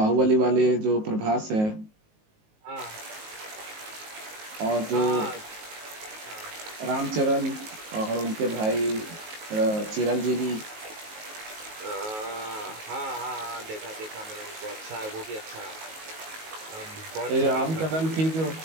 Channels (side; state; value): left; late; 19 ms